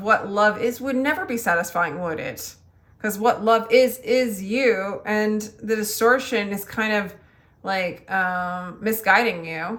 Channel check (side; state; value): both; identical; correlation 1.00